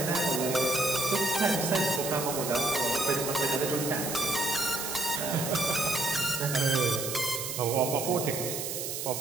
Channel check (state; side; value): noise; right; hiss, 4 dB below the sound